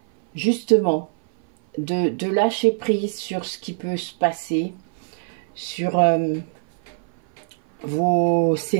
justement de lâcher prise sur ce qui peut se passer, sur vos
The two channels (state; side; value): silent; left; 58 dB below the other